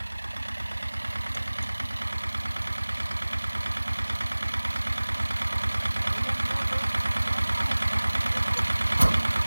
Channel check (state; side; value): inverted; both; correlation -1.00